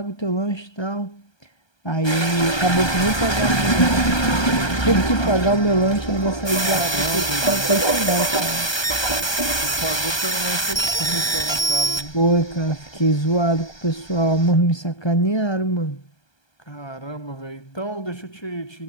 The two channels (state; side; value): late; right; 1.3 ms